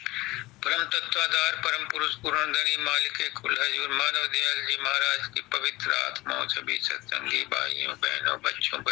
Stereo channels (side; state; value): right; quieter; 19.8 dB